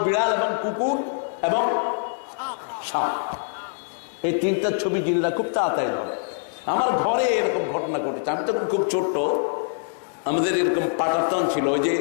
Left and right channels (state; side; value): silent; right; digital silence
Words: বিড়াল এবং কুকুর এবং সাপ। এই 3টা ছবি জিনরা খুব তাড়াতাড়ি ধরে। আমার ঘরে এরকম ঘটনা ঘটেছে। আমি তখন খুব ছোট্ট, আমাদের এরকম পাটাতন ছিল, ওই যে